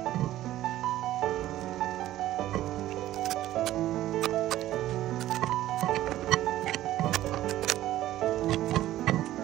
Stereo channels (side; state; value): left; quieter; 14.2 dB